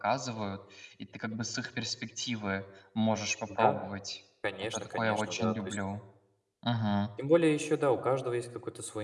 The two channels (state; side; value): identical; both; correlation 1.00